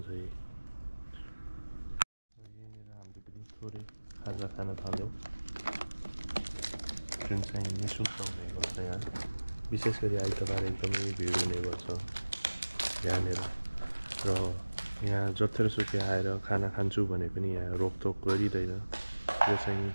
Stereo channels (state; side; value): inverted; both; correlation -1.00